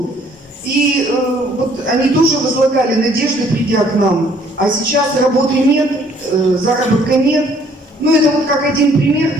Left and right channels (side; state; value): both; normal; correlation 0.61